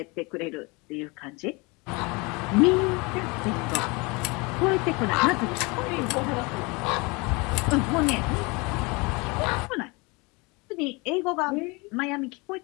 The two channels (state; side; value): quieter; right; 27.1 dB